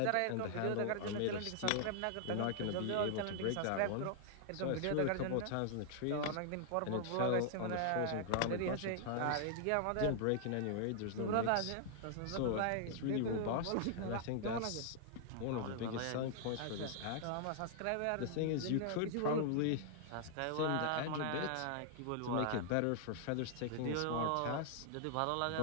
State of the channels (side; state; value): both; different; correlation -0.01